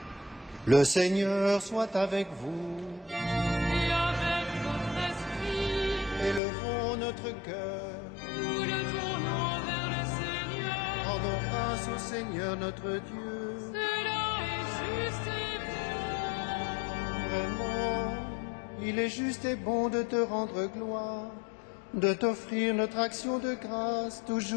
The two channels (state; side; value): drops out; right; at 6.4 s